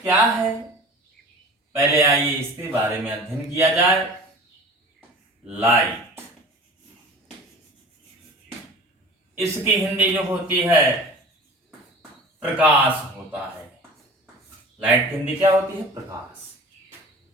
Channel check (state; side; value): normal; both; correlation 0.40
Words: क्या है, पहले आइए इसके बारे में अध्ययन किया जाए। लाइट, इसकी हिंदी जो होती है प्रकाश होता है। लाइट की हिंदी क्या होती है? प्रकाश।